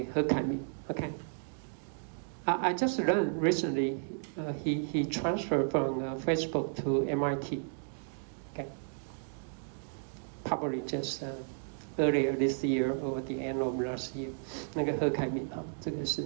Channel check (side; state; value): left; silent; digital silence